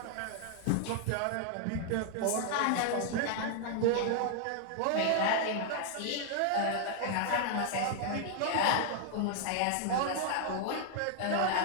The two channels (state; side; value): different; both; correlation 0.00